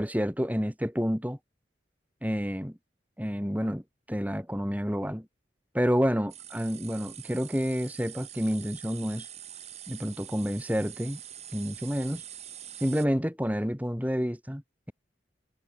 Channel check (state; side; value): normal; both; correlation 0.96